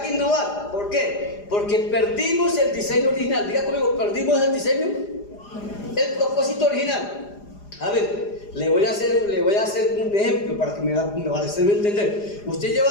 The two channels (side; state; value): right; late; 4.9 ms